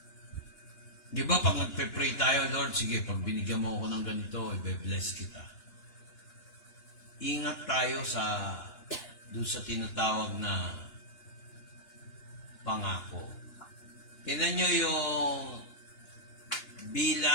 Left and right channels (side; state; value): right; late; 2.9 ms